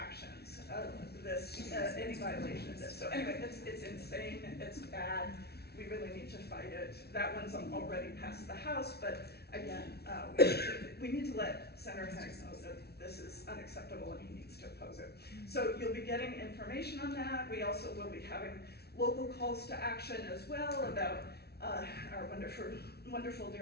of this, any violation of this. So anyway, it's insane, it's bad, we really need to fight it. That one's already passed the House, but again, we need to let Senator Haig know that this is unacceptable and he needs to oppose it. So you'll be getting information on that. We also will be having local calls to action as well about our wonderful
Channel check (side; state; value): right; late; 0.47 ms